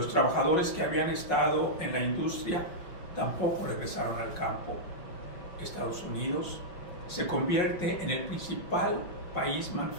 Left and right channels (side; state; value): right; late; 5.5 ms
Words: trabajadores que habían estado en la industria tampoco regresaron al campo. Estados Unidos se convierte en el principal país